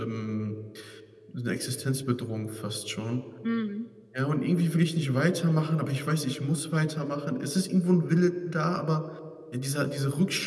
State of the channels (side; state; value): both; identical; correlation 1.00